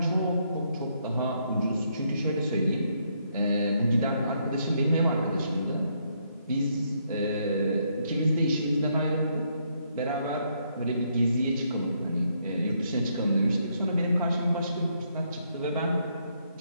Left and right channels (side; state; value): both; inverted; correlation -0.74